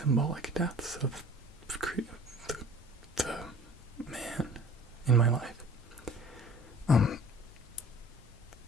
deaths of the man in my life,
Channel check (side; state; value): both; normal; correlation 0.48